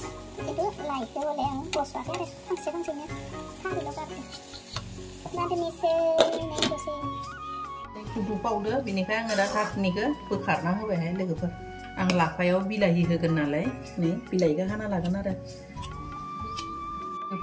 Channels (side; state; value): both; identical; correlation 1.00